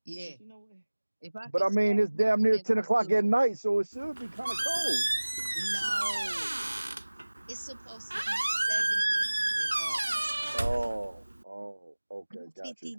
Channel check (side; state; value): both; inverted; correlation -1.00